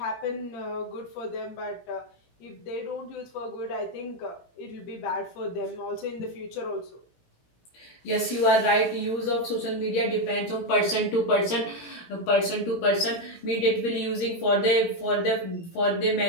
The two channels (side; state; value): right; late; 17 ms